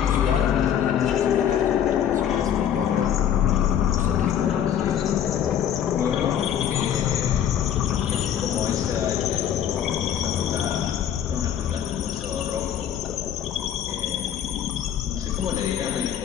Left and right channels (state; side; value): quieter; right; 9.6 dB